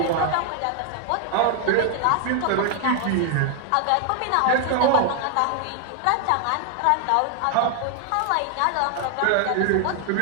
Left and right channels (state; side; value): different; both; correlation 0.00